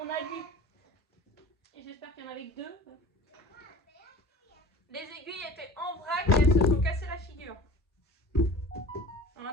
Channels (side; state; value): both; normal; correlation 0.40